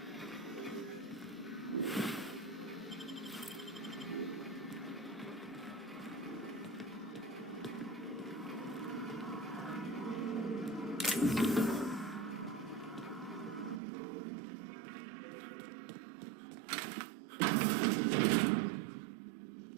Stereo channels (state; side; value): drops out; left; at 13.8 s